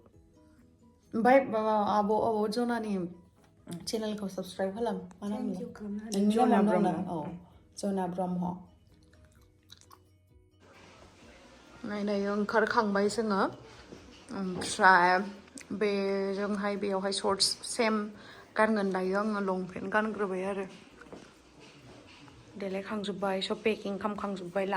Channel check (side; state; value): both; identical; correlation 1.00